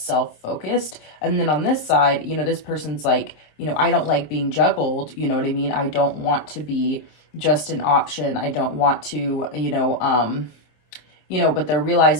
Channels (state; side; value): late; right; 26 ms